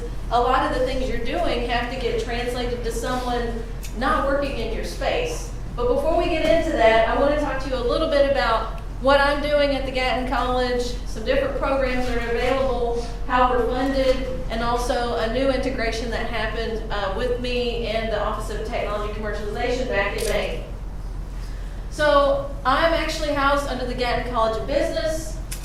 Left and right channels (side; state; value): both; identical; correlation 1.00